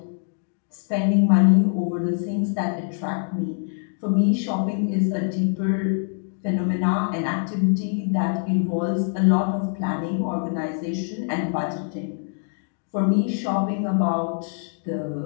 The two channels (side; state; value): right; silent; 60 dB below the other